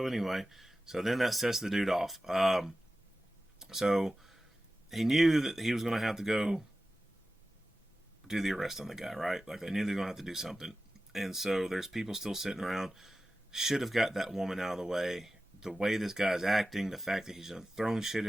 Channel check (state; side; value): normal; both; correlation 0.94